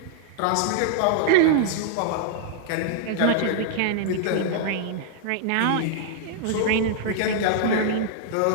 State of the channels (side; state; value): both; different; correlation -0.01